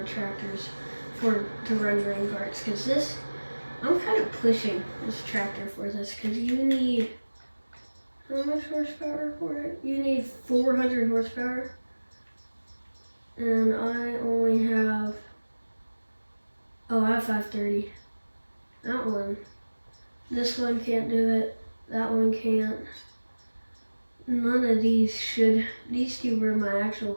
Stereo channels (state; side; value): inverted; both; correlation -1.00